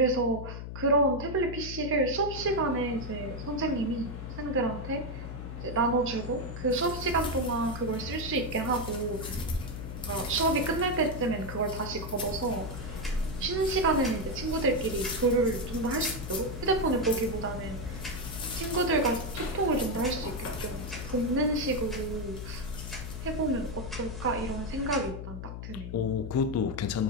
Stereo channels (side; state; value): left; noise; hum, 8 dB below the sound